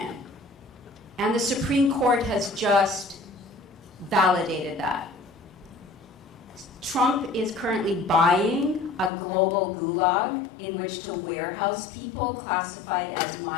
And the Supreme Court has just validated that. Trump is currently buying a global gulag in which to warehouse people classified as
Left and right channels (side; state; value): right; drops out; at 9.1 s